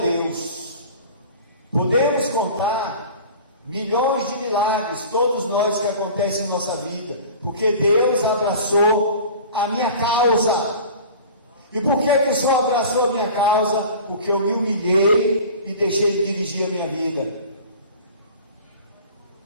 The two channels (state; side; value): inverted; both; correlation -0.40